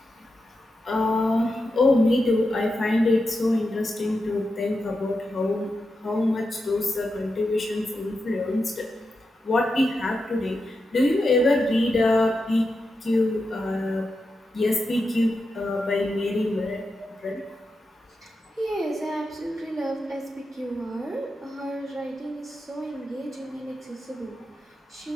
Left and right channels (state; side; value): normal; both; correlation 0.88